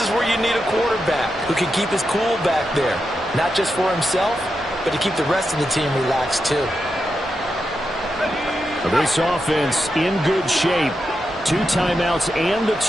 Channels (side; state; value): both; normal; correlation 0.87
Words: is where you need a quarterback who can keep his cool back there. Not just for himself, but to keep the rest of the team relaxed too. This offense in good shape. 2 timeouts and the